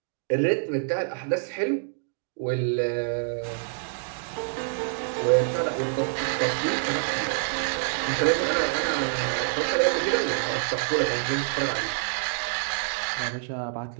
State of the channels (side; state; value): left; silent; digital silence